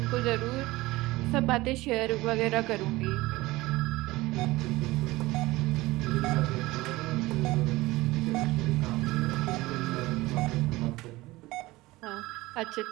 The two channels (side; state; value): left; quieter; 19.7 dB